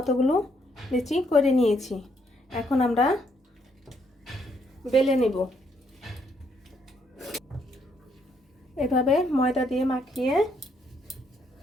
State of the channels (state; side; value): normal; both; correlation 0.72